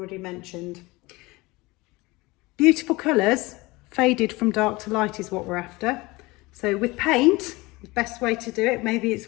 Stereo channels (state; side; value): quieter; right; 22.3 dB